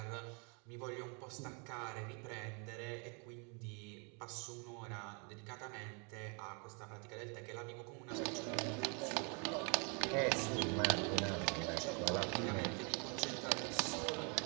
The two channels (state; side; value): quieter; left; 35.1 dB